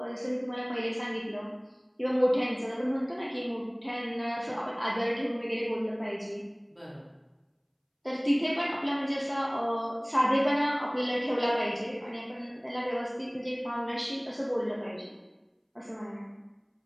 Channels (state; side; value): identical; both; correlation 1.00